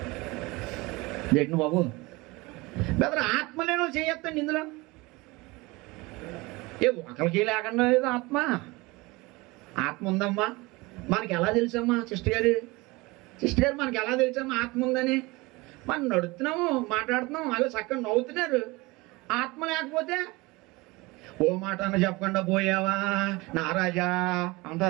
ఏంటి బాబు బెదర్ ఆత్మ లేని వాళ్ళు చేయొద్దండి. ఇందులో ఒకరికి లేకుండా లేదు ఆత్మ. ఆత్మ ఉందమ్మా. మనకి ఎలా తెలుసమ్మా సిస్టర్ గారు మనకి ఎలా తెలుసమ్మా ఆత్మ ఉందని? మనం నడుస్తున్నాము, మాట్లాడుతున్నాము, అలా చక్కగా నవ్వుతున్నారు. ఆత్మ లేకపోతే ఓ మాట అన్న చెప్పకుండా పోయావా నారాజా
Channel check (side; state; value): left; quieter; 23.2 dB